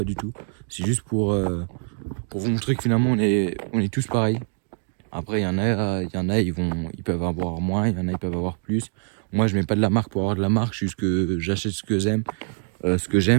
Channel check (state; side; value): silent; left; 61 dB below the other